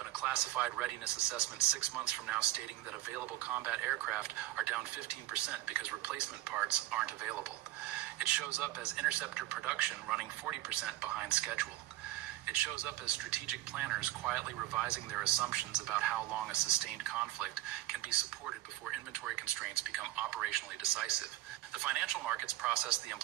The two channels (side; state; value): left; quieter; 15.6 dB